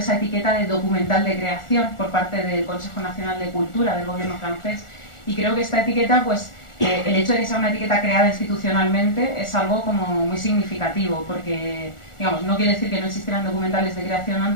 etiqueta de documental de creación por parte del Consejo Nacional de Cultura del gobierno francés, y creo que esta etiqueta, pues el hecho de que sea una etiqueta creada institucionalmente es algo como muy significativo, porque digamos, no quiere decir que no existieran documentales de creación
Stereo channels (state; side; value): late; right; 1.4 ms